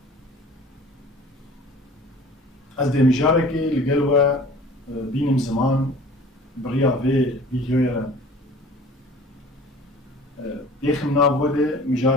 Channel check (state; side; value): normal; both; correlation 0.45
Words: از دمجاركي لقلوا بينم زمان بريا في فيديويا ديخم نابوده